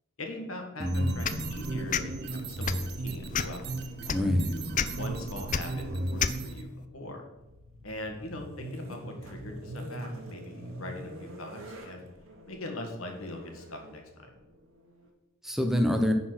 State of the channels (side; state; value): both; normal; correlation 0.70